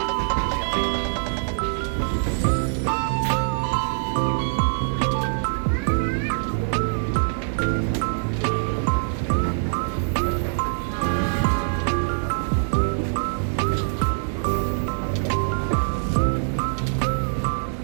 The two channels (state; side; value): silent; left; 60 dB below the other